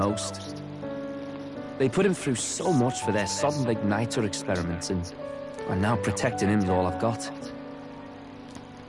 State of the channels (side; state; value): both; identical; correlation 1.00